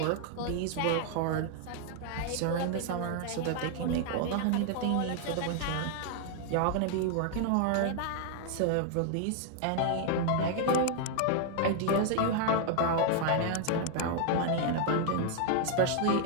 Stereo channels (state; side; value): different; both; correlation 0.00